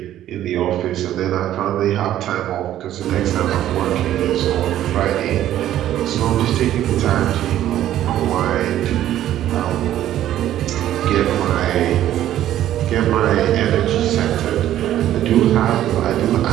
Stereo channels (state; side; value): quieter; left; 12.4 dB